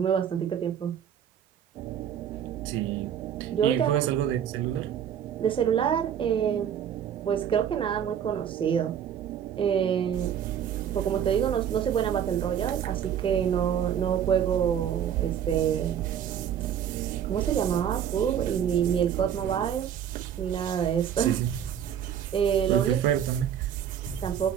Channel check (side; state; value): left; quieter; 9.1 dB